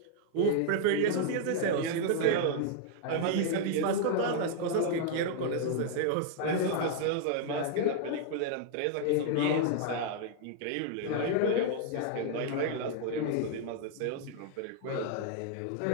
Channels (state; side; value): different; both; correlation 0.00